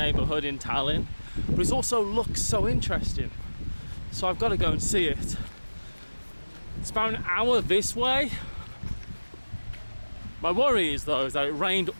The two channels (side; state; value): both; inverted; correlation -1.00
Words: in Tallinn, but it also looks so interesting. So I've got to go and see it. It's about an hour this way. My worry is though is that it rained